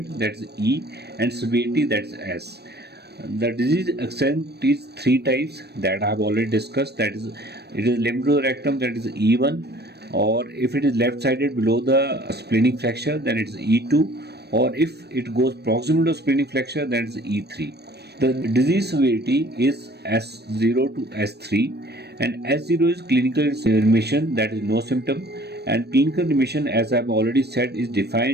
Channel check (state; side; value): late; left; 0.48 ms